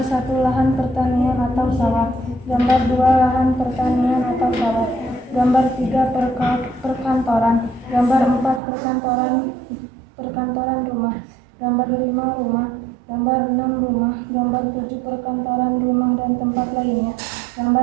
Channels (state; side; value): drops out; left; at 8.6 s